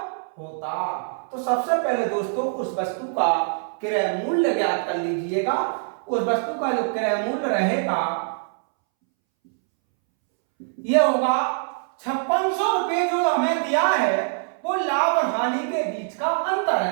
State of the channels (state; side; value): silent; left; 63 dB below the other